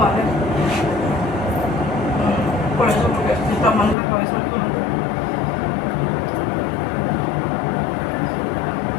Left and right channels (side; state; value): right; drops out; at 4.0 s